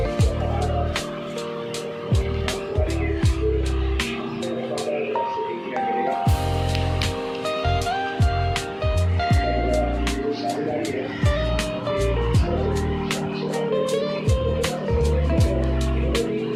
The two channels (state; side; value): identical; both; correlation 1.00